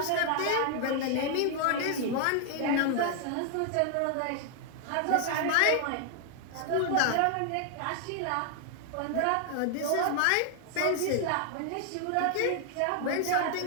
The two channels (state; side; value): different; both; correlation 0.00